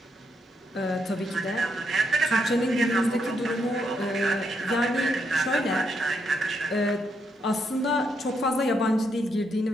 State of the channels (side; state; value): both; normal; correlation 0.78